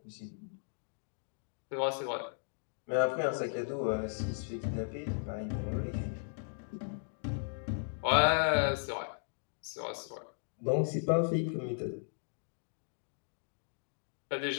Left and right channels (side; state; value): right; silent; digital silence